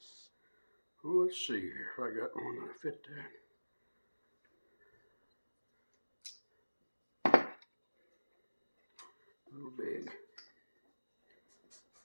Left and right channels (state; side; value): inverted; both; correlation -1.00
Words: Well, let's see here if I got one that'll fit that. A little big.